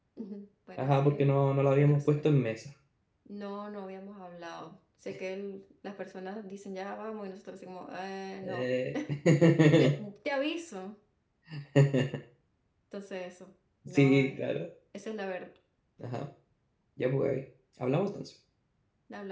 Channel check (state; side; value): identical; both; correlation 1.00